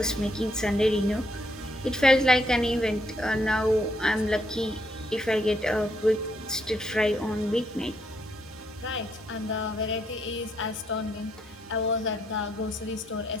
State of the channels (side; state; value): both; normal; correlation 0.74